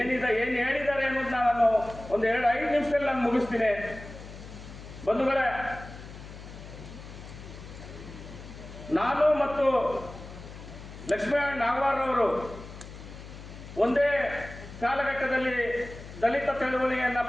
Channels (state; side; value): noise; left; hum, 14 dB below the sound